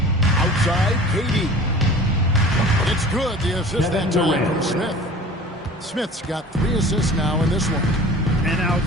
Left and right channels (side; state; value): both; normal; correlation 0.42